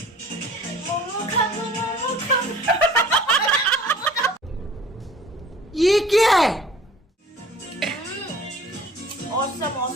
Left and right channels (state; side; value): normal; both; correlation 0.49